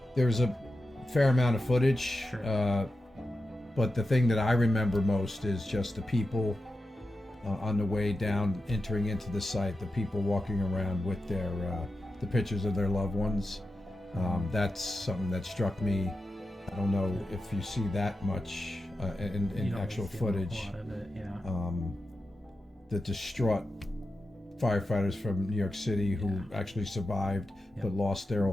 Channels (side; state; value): both; normal; correlation 0.90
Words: there's a fair amount of footage, sure. But the thing that I remember most is just the people on the way down, entering into the site, the people walking around with their the pictures of their loved ones. That's something that struck me. I don't know if you see that much in actual footage. A lot of it, the distraught firefighters from New York City who actually survived but lost their